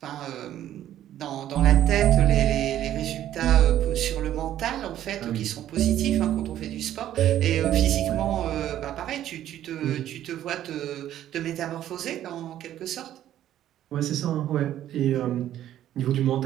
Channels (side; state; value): left; quieter; 12.0 dB